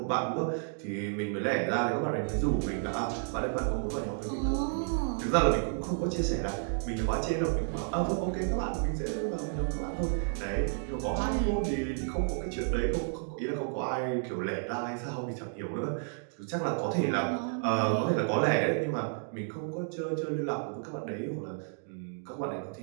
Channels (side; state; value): left; silent; 57 dB below the other